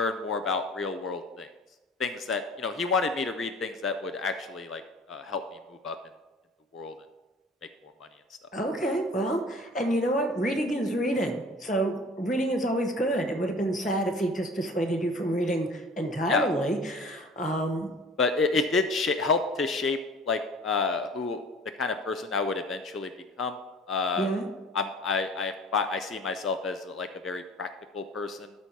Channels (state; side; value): normal; both; correlation 0.46